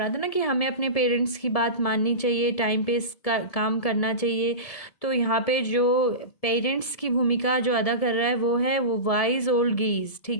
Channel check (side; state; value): right; late; 1.7 ms